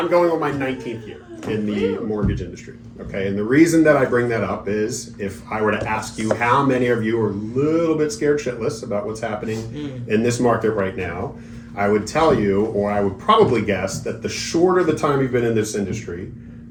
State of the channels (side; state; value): both; identical; correlation 1.00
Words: going on my 19th year in the mortgage industry. Okay? And the reason that I bring that up is if I were to ask you how many of you are a little bit scared shitless about what's happening in this market right now, I would tell you, or I would probably guess, that the shorter the time you've been in this industry,